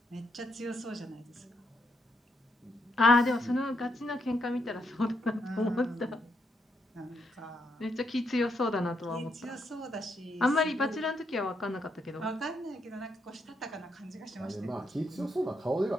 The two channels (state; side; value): normal; both; correlation 0.78